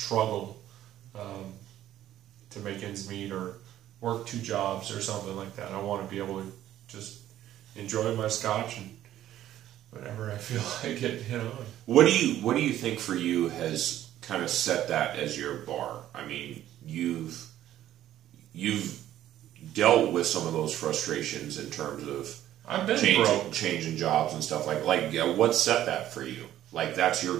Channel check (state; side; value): quieter; left; 12.6 dB